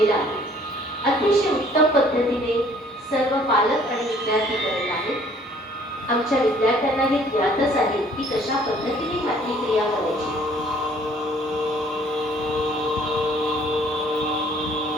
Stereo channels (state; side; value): normal; both; correlation 0.58